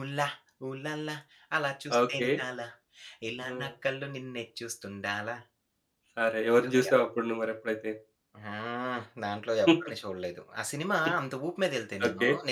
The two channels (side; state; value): both; identical; correlation 1.00